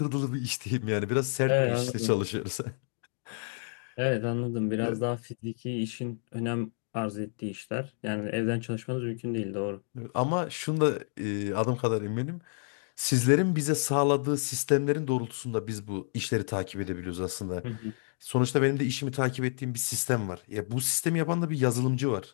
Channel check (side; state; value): right; silent; digital silence